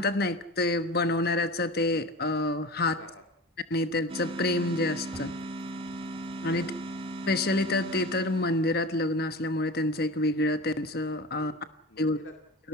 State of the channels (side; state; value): both; normal; correlation 0.33